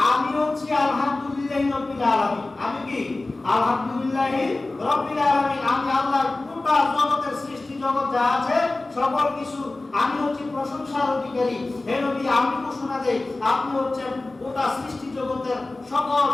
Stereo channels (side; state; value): right; quieter; 3.1 dB